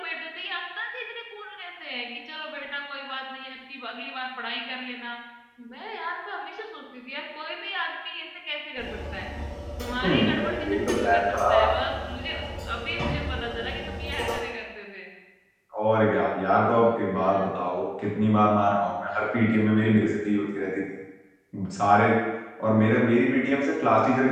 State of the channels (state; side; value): identical; both; correlation 1.00